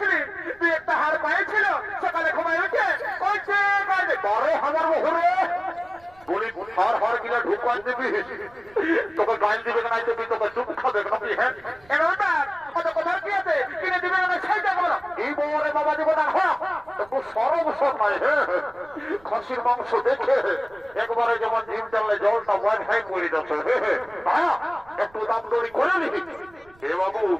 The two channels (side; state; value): right; noise; rumble, 27 dB below the sound